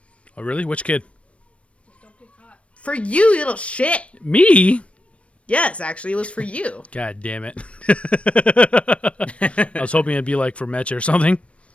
Oh, really? Which kid? For you, you little shit. Me? Yes, actually, it was for you. God damn it. I was hoping it'd be like for Metch or something.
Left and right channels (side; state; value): right; late; 0.062 ms